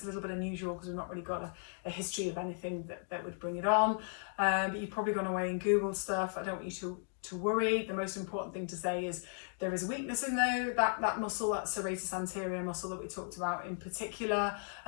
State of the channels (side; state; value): right; silent; 54 dB below the other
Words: a little bit unusual because we've not really got a history of anything that would bring it on. But you've probably gone away and Googled stuff. I don't want you to worry. The most important thing to say is there is a weakness in that muscle, that serratus anterior muscle that we talked about in particular,